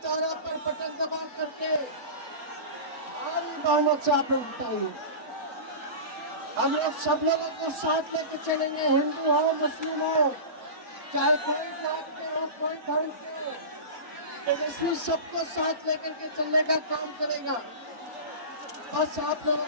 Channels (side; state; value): left; late; 4.4 ms